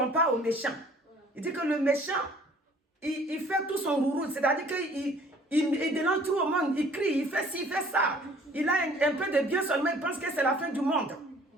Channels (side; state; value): both; normal; correlation 0.55